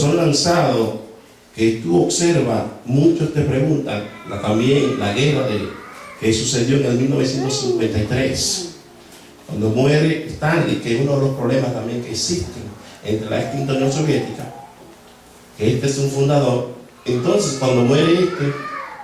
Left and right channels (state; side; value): identical; both; correlation 1.00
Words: lanzados, que tú observas, muchos te preguntan, también la guerra que sucedió en el 1953, cuando muere Stanley, que es uno de los problemas también que existen entre la extinta Unión Soviética, que este es un fundador. Entonces, cuando muere